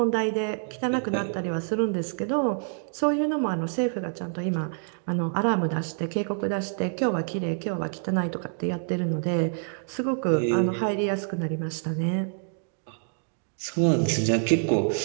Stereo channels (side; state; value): left; silent; 60 dB below the other